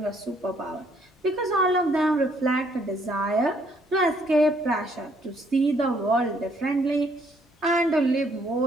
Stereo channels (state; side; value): normal; both; correlation 0.67